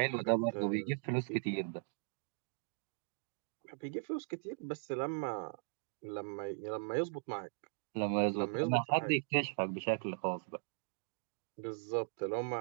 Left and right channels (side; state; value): left; silent; digital silence